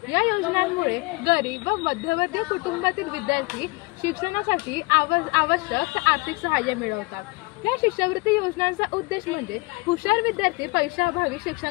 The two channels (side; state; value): right; quieter; 24.7 dB